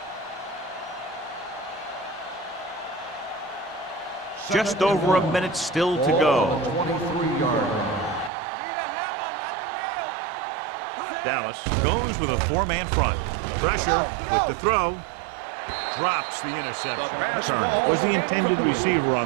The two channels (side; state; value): left; drops out; at 8.3 s